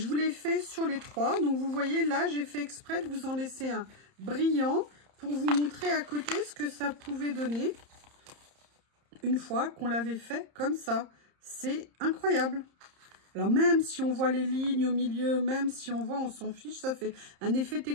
vous l'ai fait sur les 3. Donc, vous voyez, là, j'ai fait exprès de vous en laisser un brillant pour vous montrer à côté ce que ça pouvait donner une fois qu'on l'avait fait comme ça. C'est incroyable. Alors, même si on voit les lignes au milieu, même si on voit, on s'en fiche, ça fait un effet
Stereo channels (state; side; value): late; left; 30 ms